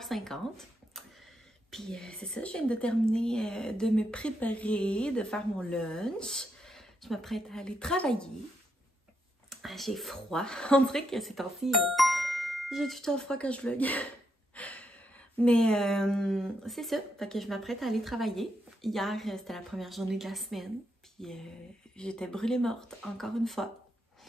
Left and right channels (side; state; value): both; normal; correlation 0.80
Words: Puis c'est ça, je viens de terminer de me préparer, de faire mon lunch. Je m'apprête à aller travailler. J'ai froid. On dirait que ces temps-ci, j'ai tout le temps froid quand je vlog. Mais c'est ça, fait que je m'apprête à aller travailler. Hier, c'était la première journée de la semaine. Puis j'étais brûlée morte, encore une fois.